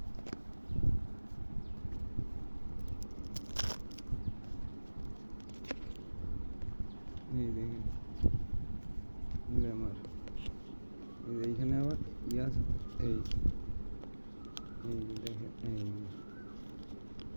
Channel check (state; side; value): inverted; both; correlation -1.00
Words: এই দেখেন লেমার। এইখানে আবার ইয়াস এই এই দেখেন এই